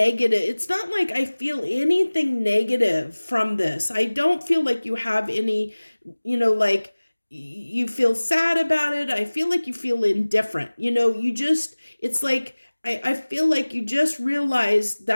It's not like I feel anything negative from this. I don't feel like you have any, like you feel sad about it. I feel like you feel indifferent. It's like, I feel like you just realize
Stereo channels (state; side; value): inverted; both; correlation -1.00